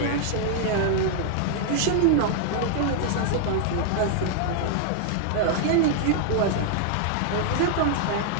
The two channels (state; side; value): different; both; correlation 0.00